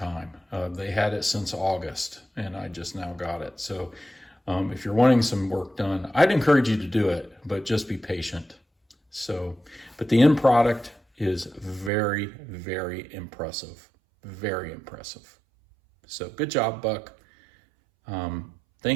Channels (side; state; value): left; drops out; at 11.9 s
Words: They had it since August, and I just now got it. So if you're wanting some work done, I'd encourage you to do it, but just be patient. So, but the end product is very, very impressive. Very impressive. So good job, Buck.